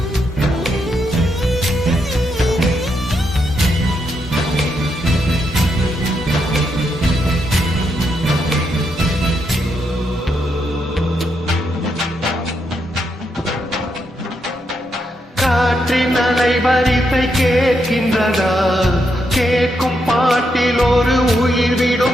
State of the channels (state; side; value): normal; both; correlation 0.80